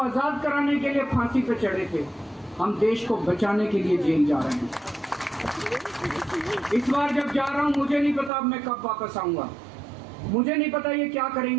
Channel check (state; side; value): drops out; left; at 8.3 s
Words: कराने के लिए फांसी पे चढ़े थे। हम देश को बचाने के लिए जेल जा रहे हैं। इस बार जब जा रहा हूं, मुझे नहीं पता अब मैं कब वापस आऊंगा, मुझे नहीं पता ये क्या